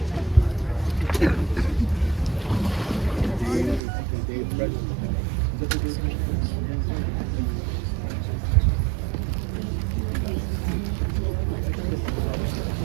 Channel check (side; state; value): left; drops out; at 3.8 s